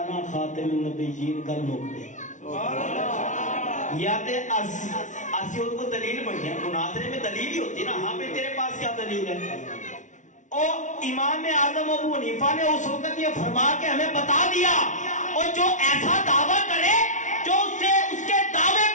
خاتم النبیین، گل مک گئی۔ یا تے اسی ان کو دلیل بنیا، مناظرے میں دلیل ہی ہوتی نا، ہاں پہ تیرے پاس کیا دلیل ہے؟ اور امام اعظم ابو حنیفہ نے اس وقت یہ فرما کے ہمیں بتا دیا، اور جو ایسا دعویٰ کرے جو اس کے دعوے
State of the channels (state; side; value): late; right; 0.36 ms